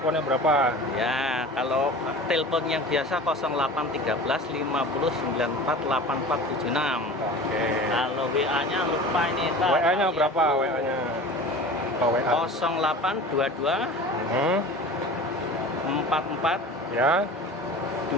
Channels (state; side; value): normal; both; correlation 0.37